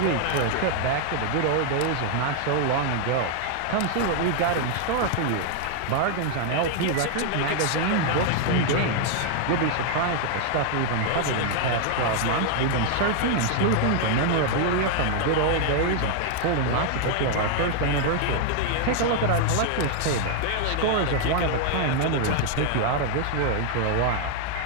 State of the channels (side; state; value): both; different; correlation 0.00